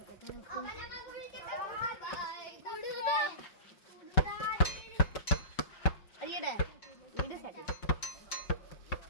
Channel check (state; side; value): late; right; 5.3 ms